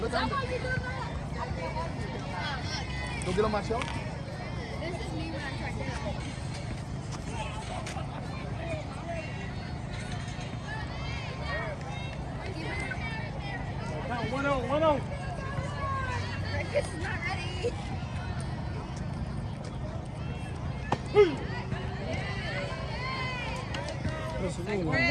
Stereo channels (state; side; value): identical; both; correlation 1.00